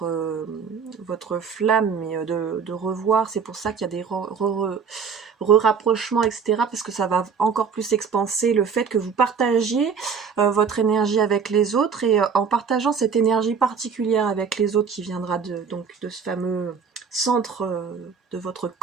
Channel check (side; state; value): left; quieter; 6.2 dB